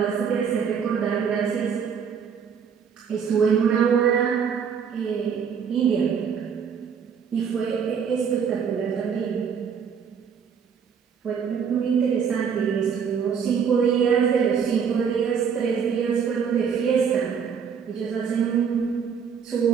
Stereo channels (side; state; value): left; quieter; 7.0 dB